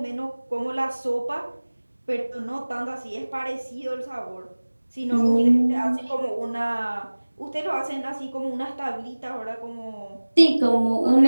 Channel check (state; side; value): inverted; both; correlation -1.00